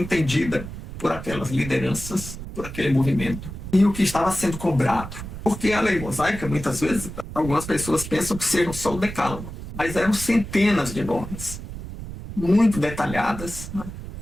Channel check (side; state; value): right; noise; rumble, 10 dB below the sound